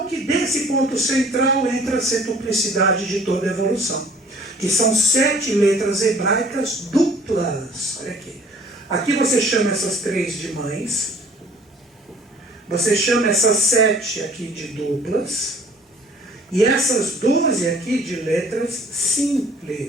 que desse ponto central entra a centuplicidade de toda a evolução, que são 7 letras hebraicas duplas. Olha aqui. Aqui você chama essas 3 de mães, você chama essas 7 aqui de duplas, e essas 12 aqui de letras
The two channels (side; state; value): both; normal; correlation 0.54